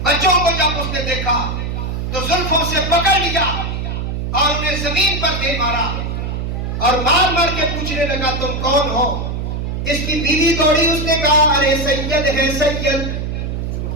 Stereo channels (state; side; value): noise; right; hum, 3 dB below the sound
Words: بچوں کو جب اس نے دیکھا تو زلفوں سے پکڑ لیا اور انہیں زمین پر دے مارا اور مار مار کے پوچھنے لگا تم کون ہو؟ اس کی بیوی دوڑی، اس نے کہا ارے سید ہے سید،